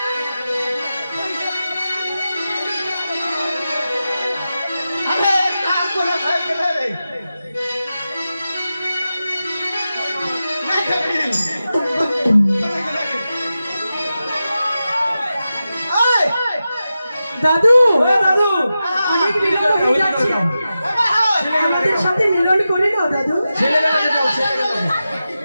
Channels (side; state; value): both; inverted; correlation -0.92